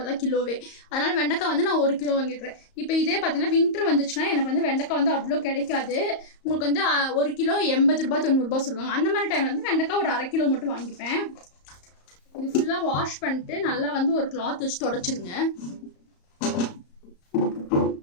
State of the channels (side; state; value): right; late; 34 ms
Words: தான் கிலோவே. அதனால் வெண்டைக்காய் வந்து நான் 1 கிலோ வாங்கிக்கிறேன். இப்போ இதே பார்த்தீங்கன்னா வின்டர் வந்துச்சுன்னா எனக்கு வந்து வெண்டைக்காய் வந்து அவ்வளோ கிடைக்காது. உங்களுக்கு வந்து 1 கிலோ 80 ரூபா 90 ரூபா சொல்லுவாங்க. அந்த மாதிரி டைமில் வந்து வெண்டைக்காய் ஒரு 1/2 கிலோ மட்டும் வாங்கிப்பேன். இது ஃபுல்லாக வாஷ் பண்ணிட்டு நல்லா வந்து ஒரு கிளாத் வச்சு தொடச்சிருங்க.